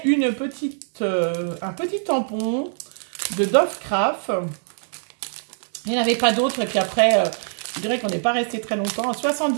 un petit tampon de Dove Craft. Il n'y en avait pas d'autres. Et puis après, je dirais qu'on n'est pas resté très longtemps. À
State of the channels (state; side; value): silent; left; digital silence